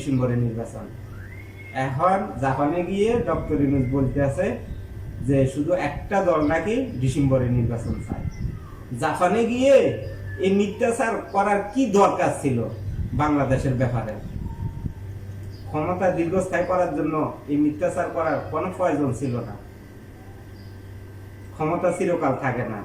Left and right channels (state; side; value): identical; both; correlation 1.00